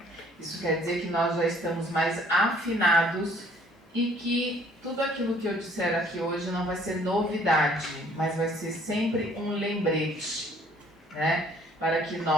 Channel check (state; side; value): normal; both; correlation 0.59